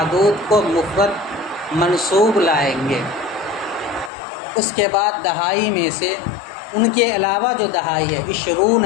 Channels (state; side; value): drops out; right; at 4.1 s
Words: کو مفرد منصوب لائیں گے۔ اس کے بعد دہائی میں سے ان کے علاوہ جو دہائی ہے